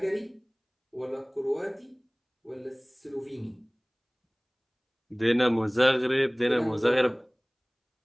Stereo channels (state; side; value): identical; both; correlation 1.00